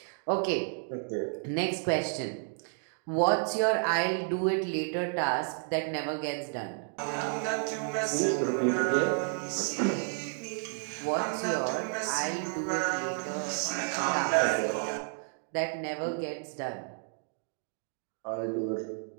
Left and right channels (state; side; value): silent; left; 57 dB below the other